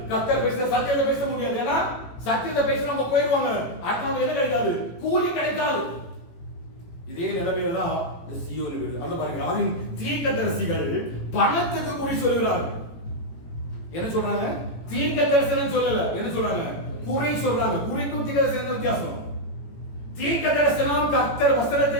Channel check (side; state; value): right; late; 18 ms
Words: கர்த்தர் பேசுற சத்தியத்தை பேச முடியாது. ஏன்னா சத்தியத்தை பேசினவங்க போயிடுவாங்க, அடுத்தவங்க என்ன கிடைக்காது? கூலி கிடைக்காது. இதே நிலைமையில தான் இந்த சீயோன் வீடு. அது பாருங்க, அதன் தீர்க்கதரிசிகள் பணத்துக்கு குறி சொல்லுகிறார்கள். என்ன சொல்றாங்க? தீர்க்க தரிசனம் சொல்லல, என்ன சொல்றாங்க? குறி சொல்றாங்க. குறிக்கும் தீர்க்க தரிசனம் வித்தியாசம். தீர்க்க தரிசனம் கர்த்தர் வசனத்தை